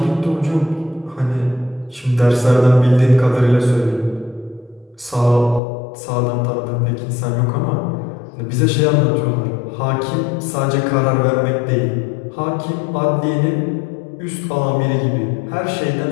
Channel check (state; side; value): drops out; right; at 5.6 s